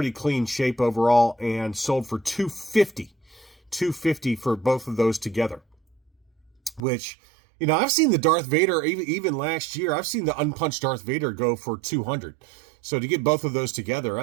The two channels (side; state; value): left; drops out; at 6.8 s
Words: clean shape overall and sold for $250 for both of those together. Which, I've seen the Darth Vader, even last year, I've seen the unpunched Darth Vader go for $200. So to get both of those together,